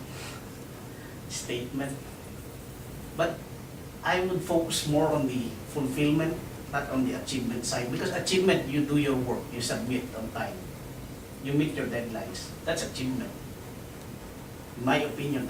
statement, but I would focus more on the fulfillment, not on the achievement side, because achievement, you do your work, you submit on time, you meet your deadlines, that's achievement. In my opinion,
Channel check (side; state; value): both; identical; correlation 1.00